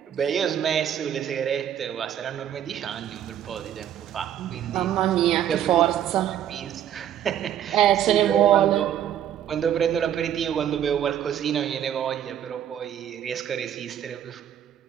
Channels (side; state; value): left; quieter; 10.3 dB